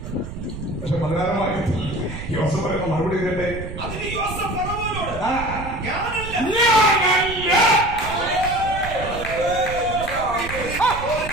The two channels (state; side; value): noise; right; rumble, 9 dB below the sound